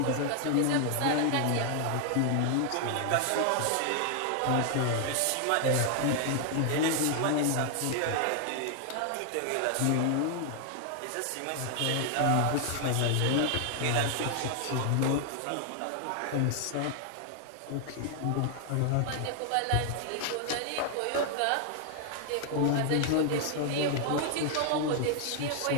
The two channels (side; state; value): both; different; correlation 0.00